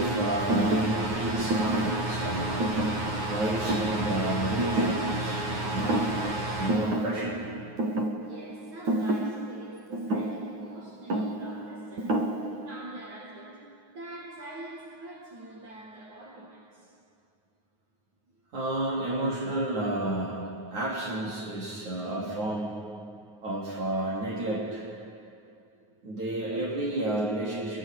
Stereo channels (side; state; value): left; late; 9.5 ms